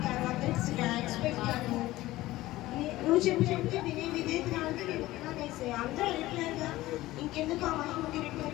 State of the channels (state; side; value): quieter; right; 17.1 dB